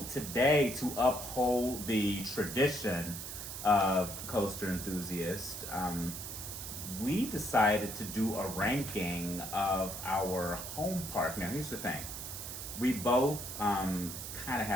today, to uphold the tradition of Coaster Enthusiast, we decided to do a ranking of our home park. Now here's the thing. We both kind of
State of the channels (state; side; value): noise; right; hiss, 8 dB below the sound